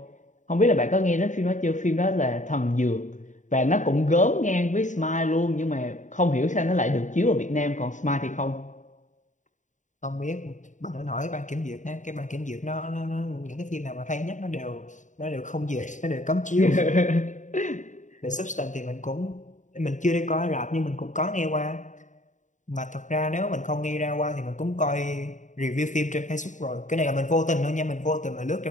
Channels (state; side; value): late; right; 0.36 ms